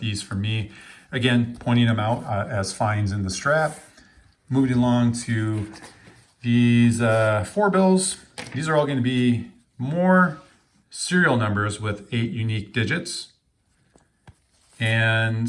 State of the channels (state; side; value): identical; both; correlation 1.00